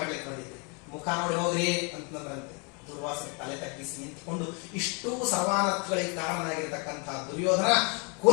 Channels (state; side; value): quieter; right; 33.8 dB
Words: ಬಂದಿದ್ರಿ, ಮುಖ ನೋಡಿ ಹೋಗ್ರಿ ಅಂತಂದ್ರಂತೆ. ದುರ್ವಾಸನೆ ತಲೆ ತಗ್ಗಿಸಿ ನಿಂತ್ಕೊಂಡು ಇಷ್ಟೂ ಸರ್ವಾನರ್ಥಗಳಿಗೆ ಕಾರಣನಾಗಿರ್ತಕ್ಕಂತಹ ದುರ್ಯೋಧನ